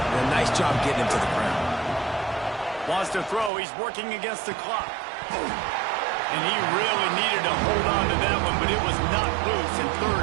a nice job getting him to the ground. Wants to throw. He's working against the clock. And he really needed to hold on to that one, but it was not loose, and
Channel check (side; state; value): left; drops out; at 3.5 s